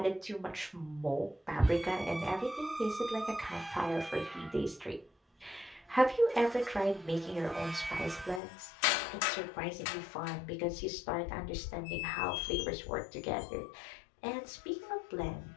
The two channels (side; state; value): right; drops out; at 8.4 s